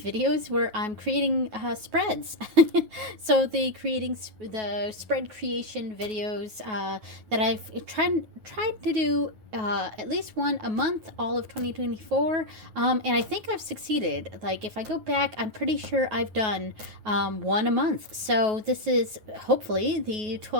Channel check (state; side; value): late; left; 9.3 ms